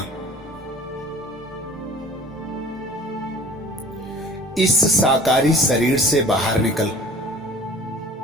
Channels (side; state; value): both; normal; correlation 0.46